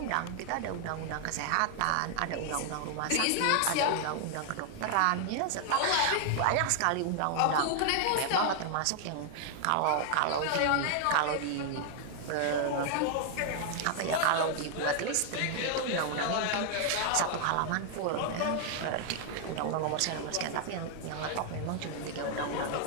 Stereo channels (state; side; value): different; both; correlation 0.00